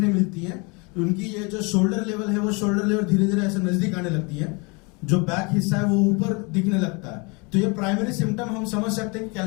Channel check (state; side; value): quieter; right; 29.9 dB